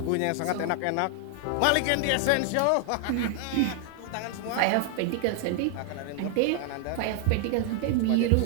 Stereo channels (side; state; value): both; different; correlation 0.00